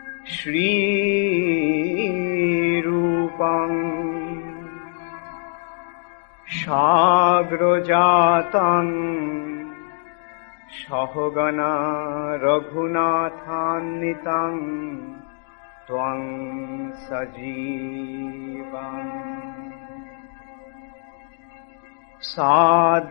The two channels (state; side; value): silent; right; digital silence